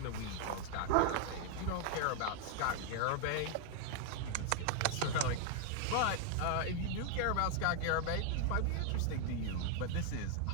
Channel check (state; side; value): different; both; correlation 0.00